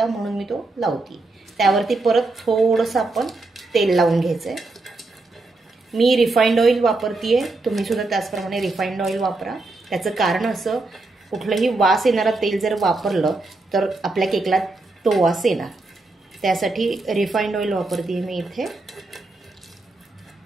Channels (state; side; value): quieter; left; 3.2 dB